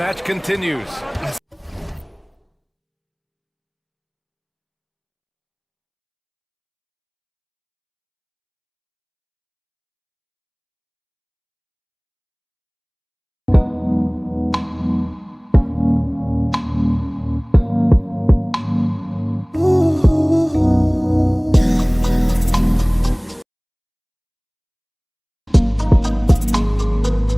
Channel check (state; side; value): identical; both; correlation 1.00